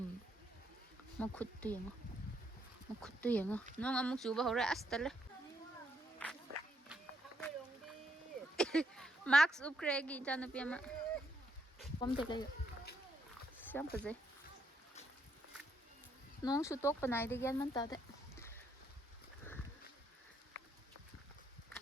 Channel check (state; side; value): normal; both; correlation 0.75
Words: Ma khuttu yenga. Nong amuk chuba hore astale. Max upgrade ijanupi ama. Kom te lai. Siam paje. Nong su tok panai de gian man ta de.